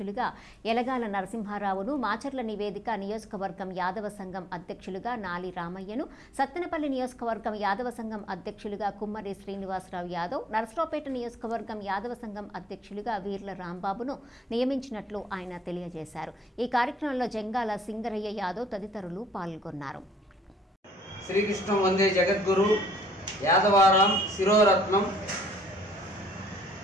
యలగాల నరసింహారావును, మాచర్ల నివేదిక నియోజకవర్గం యాదవ సంఘం అధ్యక్షులుగా నాలి రామయ్యను, సత్తెనపల్లి నియోజకవర్గం యాదవ సంఘం అధ్యక్షులుగా కుమ్మరి శ్రీనివాసరావు యాదవ్, నరసరావుపేట నియోజకవర్గం యాదవ సంఘం అధ్యక్షులుగా వీర్ల రాంబాబును నియమించినట్లు ఆయన తెలియజేశారు. ఈ కార్యక్రమంలో జంగాల సింగరయ్య యాదవ్ తదితరులు పాల్గొన్నారు. శ్రీకృష్ణ వందే జగద్గురు యాదవారాం శిరోరత్నం.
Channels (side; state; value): both; normal; correlation 0.65